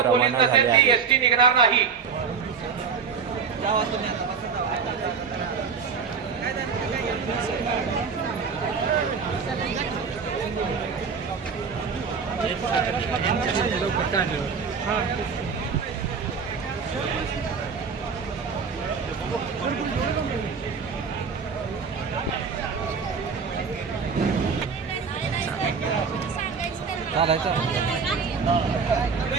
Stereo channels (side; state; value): left; quieter; 5.7 dB